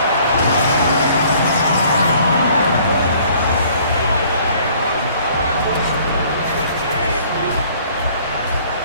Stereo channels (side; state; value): both; inverted; correlation -0.57